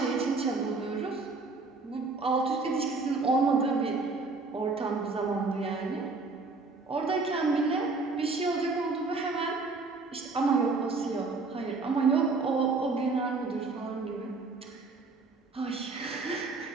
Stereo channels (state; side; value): quieter; left; 3.8 dB